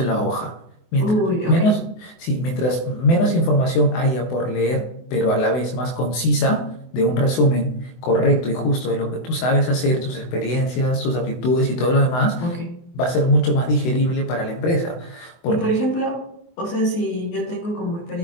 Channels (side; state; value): right; late; 24 ms